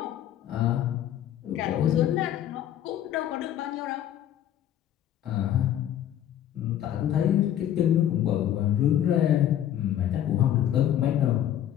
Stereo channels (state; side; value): quieter; right; 11.1 dB